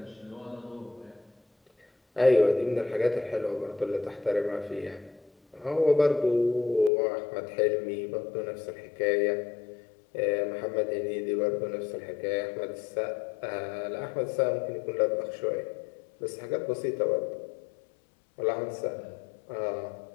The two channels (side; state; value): right; drops out; at 6.9 s